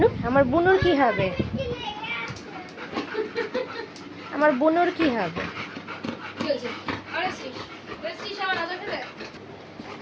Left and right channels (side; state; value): both; identical; correlation 1.00